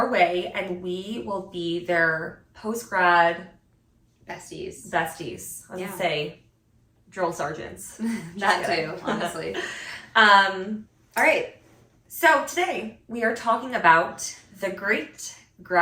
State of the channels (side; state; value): both; identical; correlation 1.00